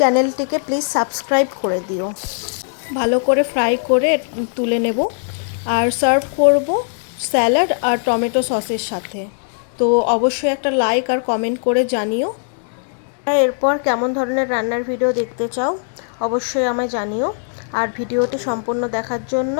প্লিজ সাবস্ক্রাইব করে দিও। ভালো করে ফ্রাই করে তুলে নেব আর সার্ভ করব স্যালাড আর টমেটো সসের সাথে। তো অবশ্যই একটা লাইক আর কমেন্ট করে জানিও। এরপর কেমন ধরনের রান্নার ভিডিও দেখতে চাও অবশ্যই আমায় জানিও। আর ভিডিওটি সম্পূর্ণ দেখার জন্য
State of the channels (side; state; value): right; silent; digital silence